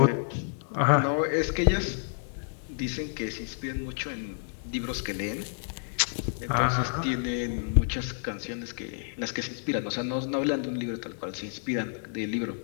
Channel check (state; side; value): silent; right; digital silence